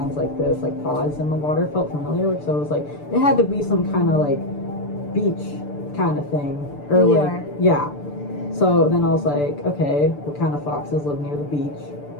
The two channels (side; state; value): right; late; 6.8 ms